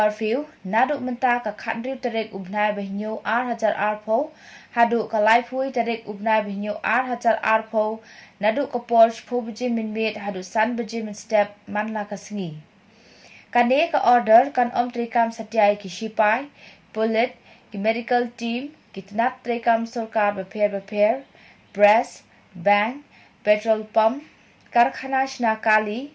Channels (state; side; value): identical; both; correlation 1.00